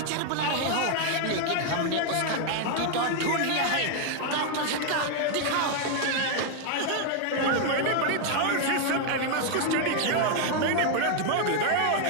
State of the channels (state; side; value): different; both; correlation 0.00